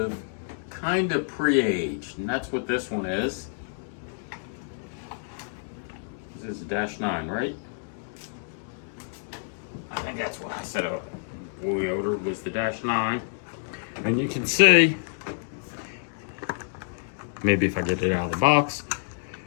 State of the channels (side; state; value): right; silent; digital silence